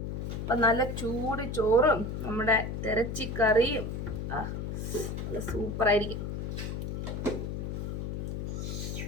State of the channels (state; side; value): noise; left; hum, 4 dB below the sound